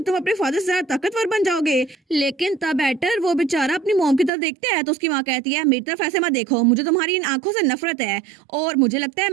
तुम अपने फादर से ज्यादा ताकतवर बन जाओगे। लेकिन तब एटर वो बेचारा अपनी मॉम की तरफ देखते हैं, तो उसकी माँ कहती है मेरी तरफ ऐसे मत देखो, मुझे तुम्हारी इन आंखों से नफरत है और मुझे लगता है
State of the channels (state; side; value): drops out; left; at 4.3 s